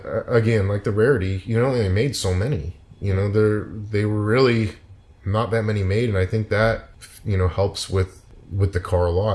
again, like the rarity, you know, they made so many. You know, they were really not that many made, and I think that, you know, helps with the car a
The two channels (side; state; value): both; identical; correlation 1.00